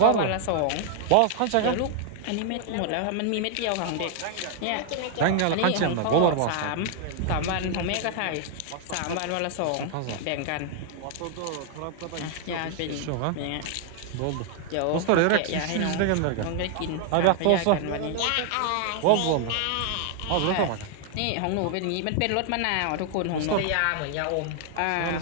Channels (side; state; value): both; different; correlation 0.00